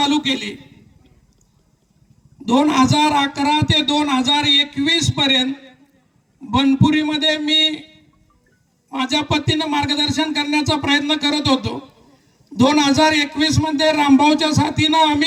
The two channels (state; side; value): identical; both; correlation 1.00